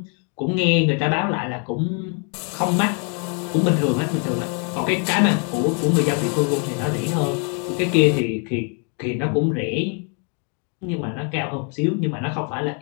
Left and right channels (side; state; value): right; quieter; 39.5 dB